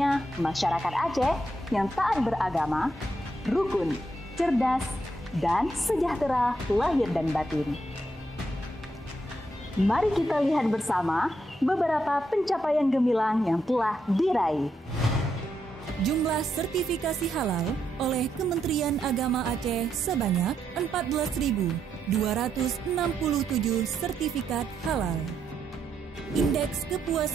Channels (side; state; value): both; normal; correlation 0.80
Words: masyarakat Aceh yang taat beragama, rukun, cerdas, dan sejahtera lahir dan batin. Mari kita lihat bersama beberapa pencapaian gemilang yang telah diraih. Jumlah sertifikasi halal oleh Kementerian Agama Aceh sebanyak 14.267 sertifikat halal. Indeks